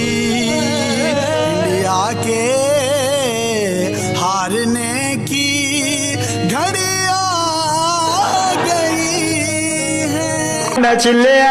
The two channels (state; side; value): identical; both; correlation 1.00